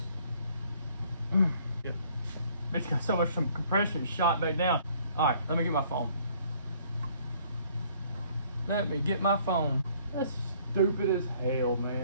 It's got so much compression shot back down. All right, let me get my phone. Let me get my phone. That's stupid as hell,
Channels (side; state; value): both; inverted; correlation -0.60